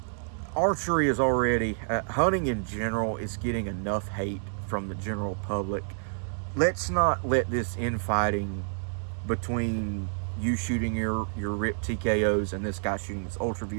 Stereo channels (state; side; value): silent; left; 59 dB below the other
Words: Archery is already, hunting in general is getting enough hate from the general public. Let's not let this infighting between you shooting your RIP TKOs and this guy shooting his